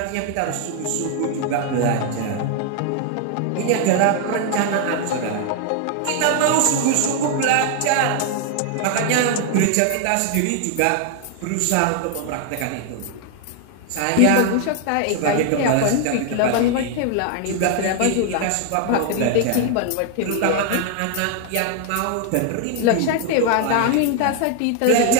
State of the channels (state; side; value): different; both; correlation 0.00